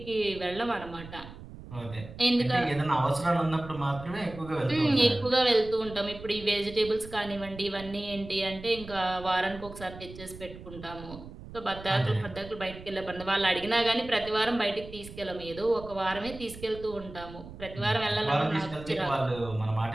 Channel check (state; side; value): noise; right; rumble, 15 dB below the sound